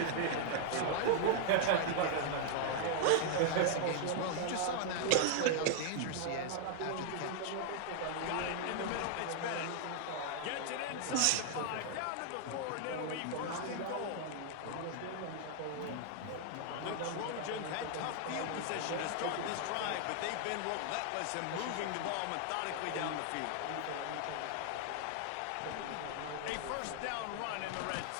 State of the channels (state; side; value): different; both; correlation 0.00